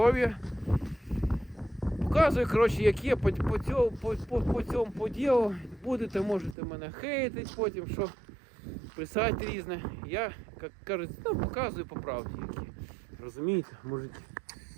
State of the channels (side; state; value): left; drops out; at 6.6 s